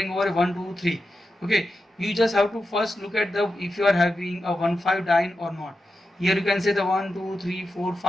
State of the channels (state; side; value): normal; both; correlation 0.89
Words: over 1 2 3. Okay, you just have to first look at the if you are having a 1,5 diene or not. Here you can say the 1 2 3 4